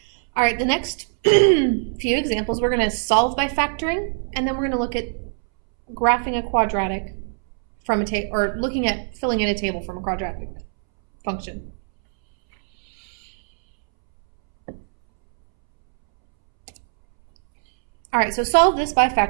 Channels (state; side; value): silent; left; 64 dB below the other